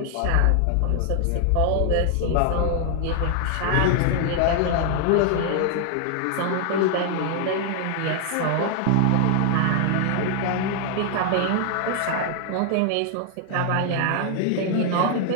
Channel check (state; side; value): different; both; correlation 0.00